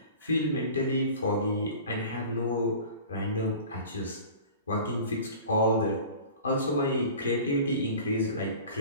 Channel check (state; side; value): inverted; both; correlation -0.40